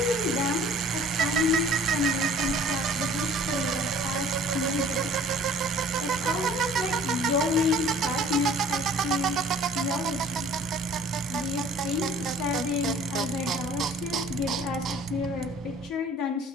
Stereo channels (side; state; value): both; normal; correlation 0.51